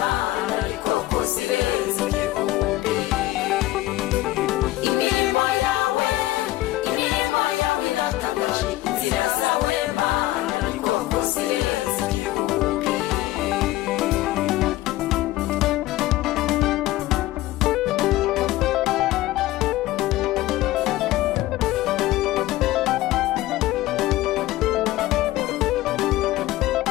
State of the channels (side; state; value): right; quieter; 16.6 dB